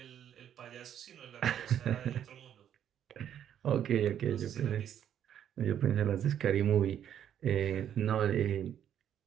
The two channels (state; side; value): quieter; left; 9.8 dB